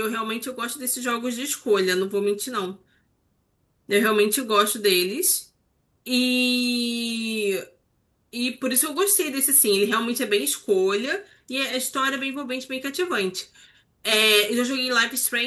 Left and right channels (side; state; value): both; identical; correlation 1.00